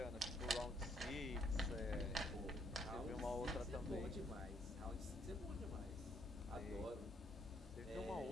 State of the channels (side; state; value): both; normal; correlation 0.69